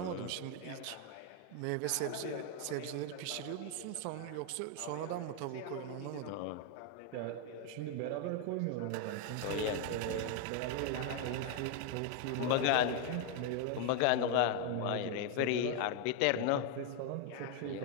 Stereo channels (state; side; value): different; both; correlation 0.01